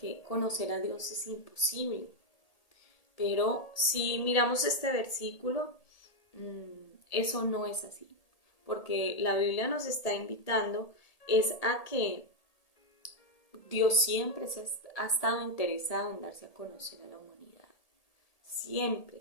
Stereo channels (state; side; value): late; right; 1.8 ms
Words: conocer a Dios es imposible. Pero si miramos este versículo, eso no es así, porque la Biblia nos está invitando es a que Dios siempre ha estado interesado en darse a conocer a la humanidad, siempre,